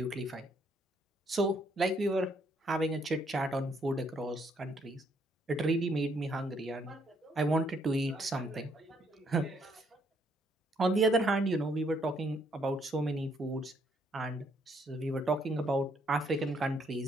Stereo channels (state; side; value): normal; both; correlation 0.70